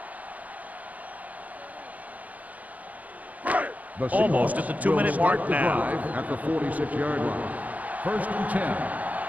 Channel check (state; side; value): late; left; 0.075 ms